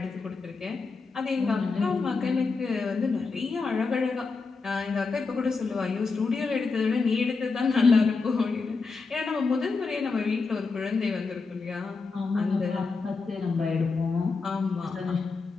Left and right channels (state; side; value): quieter; right; 4.4 dB